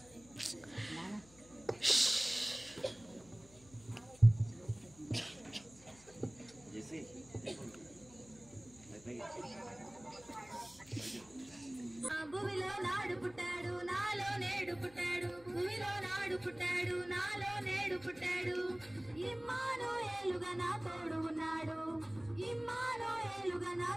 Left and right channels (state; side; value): noise; left; hum, 24 dB below the sound